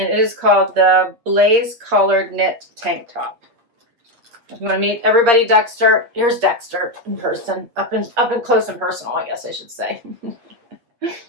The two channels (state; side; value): late; left; 8.6 ms